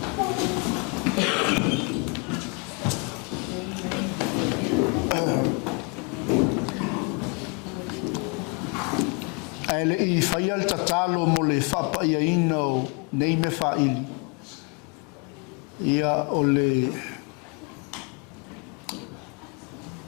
Ele I whaia le tatalo mo le whapa ia ina o nei me whaili. Ia o le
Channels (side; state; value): right; quieter; 33.0 dB